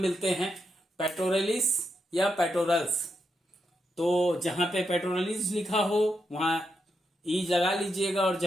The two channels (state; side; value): normal; both; correlation 0.83